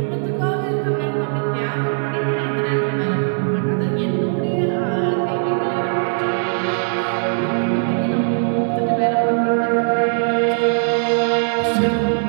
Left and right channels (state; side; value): silent; left; digital silence